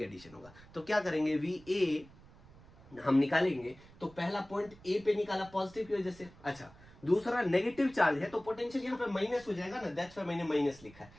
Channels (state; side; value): noise; right; rumble, 22 dB below the sound